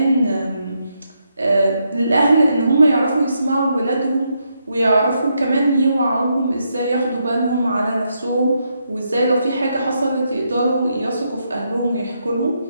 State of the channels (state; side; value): inverted; both; correlation -0.80